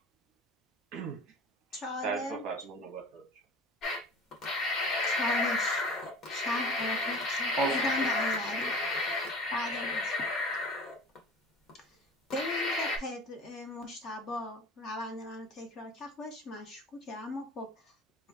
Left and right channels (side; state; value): both; normal; correlation 0.40